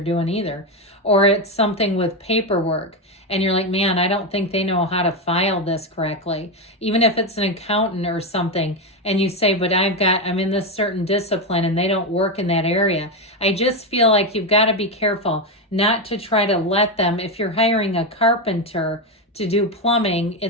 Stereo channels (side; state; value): both; normal; correlation 0.10